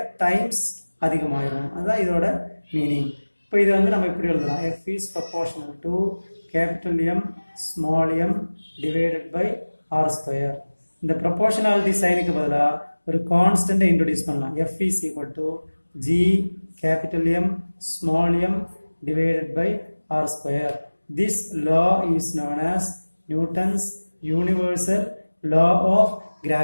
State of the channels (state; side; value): inverted; both; correlation -1.00